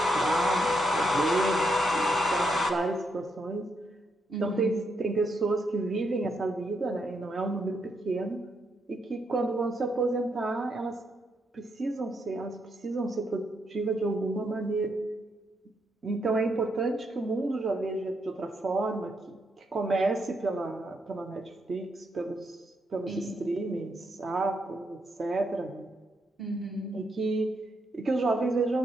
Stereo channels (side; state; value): both; normal; correlation 0.79